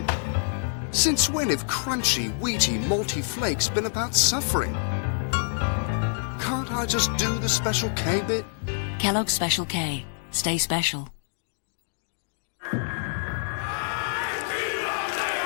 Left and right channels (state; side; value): silent; right; digital silence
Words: Since when have crunchy, wheaty, malty flakes been about suffering? Can't I just do the Special K bit? Kellogg's Special K. Stay special.